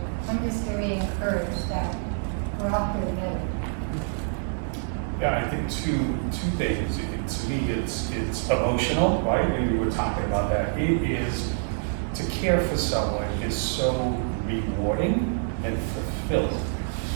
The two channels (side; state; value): left; silent; digital silence